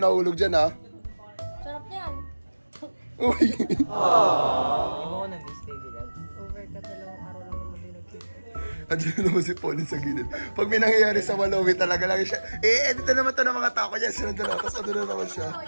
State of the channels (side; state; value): both; inverted; correlation -1.00